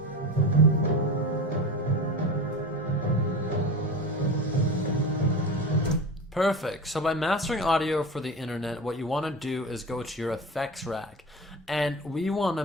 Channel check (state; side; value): normal; both; correlation 0.28